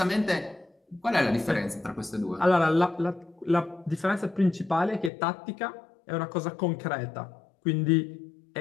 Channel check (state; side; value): drops out; right; at 5.1 s